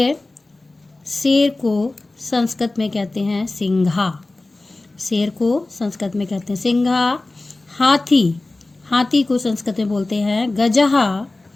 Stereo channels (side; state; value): right; quieter; 3.0 dB